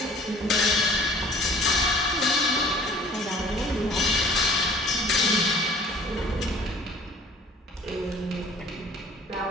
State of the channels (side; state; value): both; normal; correlation 0.51